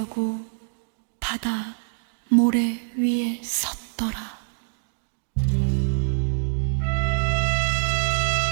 바다 모래 위에 섰다.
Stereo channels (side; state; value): left; silent; digital silence